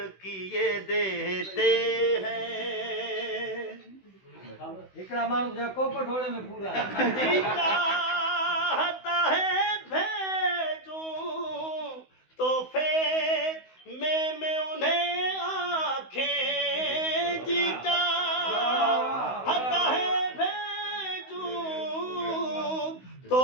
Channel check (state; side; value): late; right; 16 ms